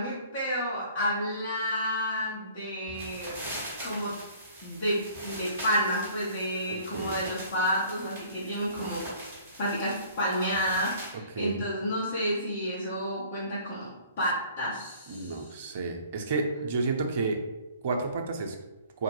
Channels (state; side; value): inverted; both; correlation -0.53